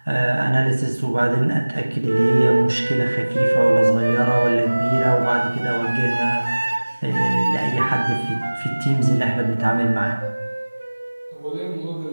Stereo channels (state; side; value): inverted; both; correlation -1.00